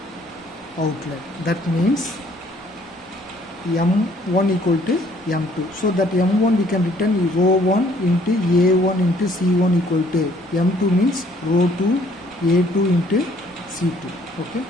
outlet. That means M1 equal to M2. So that M1 we can written rho 1 into A1 into C1 equal to M2 means rho 2 A2 into C2. Okay.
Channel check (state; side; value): normal; both; correlation 0.61